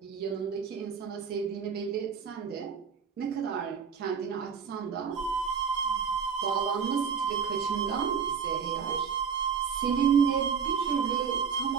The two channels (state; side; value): quieter; left; 6.7 dB